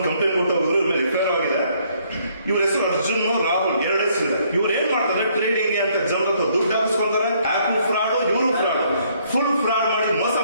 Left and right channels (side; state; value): both; inverted; correlation -0.67